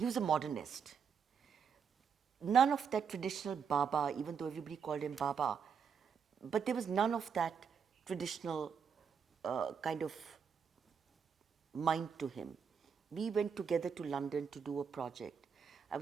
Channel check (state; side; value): quieter; left; 6.7 dB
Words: a modernist. None of that traditional Baba, even though everybody called him Baba, but there was none of that traditional kind of mind to him. We went together to London to do a project. I